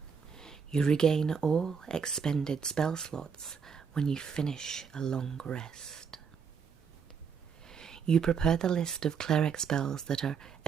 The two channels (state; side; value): quieter; left; 6.4 dB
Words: You regain all expended spell slots when you finish a long rest. You prepare the list of cleric spells that are